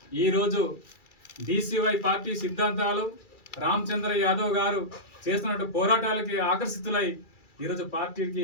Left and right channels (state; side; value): late; right; 2.3 ms